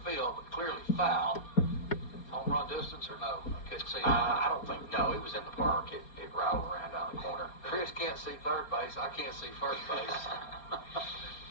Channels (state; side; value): late; right; 4.3 ms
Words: field, but clearly foul. Home run distance or no? I couldn't see. I don't think, no, it was in the park. It rattled around down the corner. Chris can't see third base. I can't see first base.